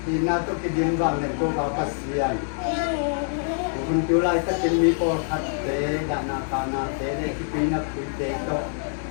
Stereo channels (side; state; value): right; silent; 62 dB below the other